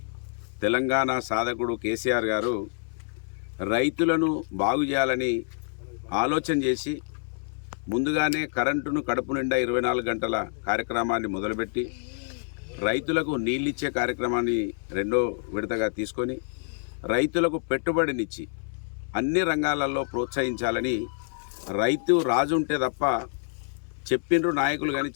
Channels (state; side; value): silent; right; digital silence